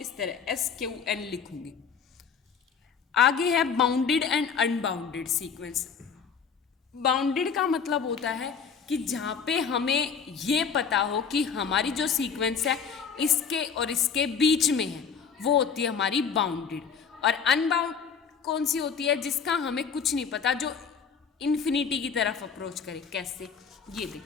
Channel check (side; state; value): right; quieter; 6.4 dB